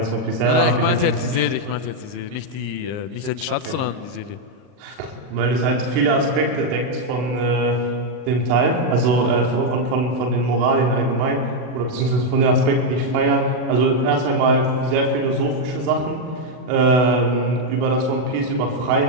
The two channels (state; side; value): late; left; 39 ms